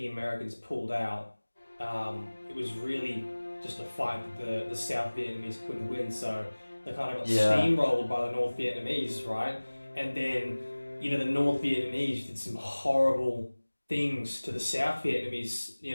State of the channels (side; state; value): both; inverted; correlation -1.00